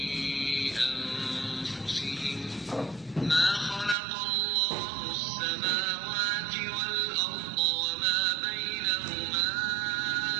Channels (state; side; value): drops out; left; at 4.0 s